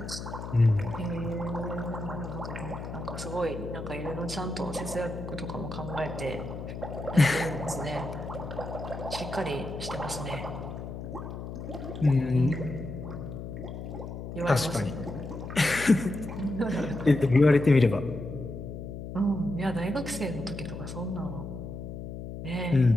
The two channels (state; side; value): noise; left; hum, 8 dB below the sound